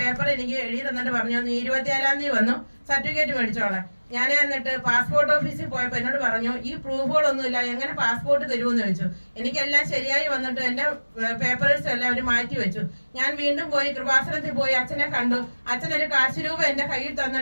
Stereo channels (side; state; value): both; inverted; correlation -1.00